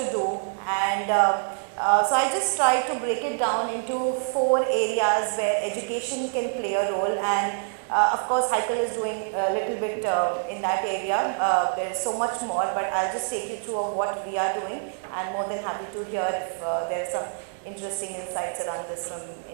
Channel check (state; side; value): silent; left; 61 dB below the other